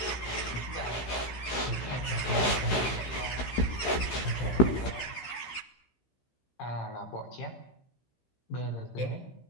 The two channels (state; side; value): late; right; 16 ms